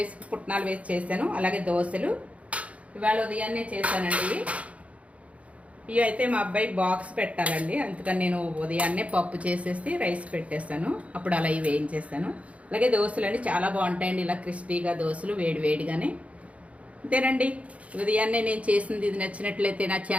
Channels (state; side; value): late; left; 0.065 ms